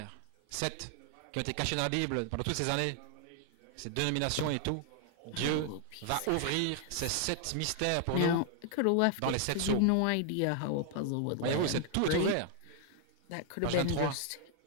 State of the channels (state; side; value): different; both; correlation 0.00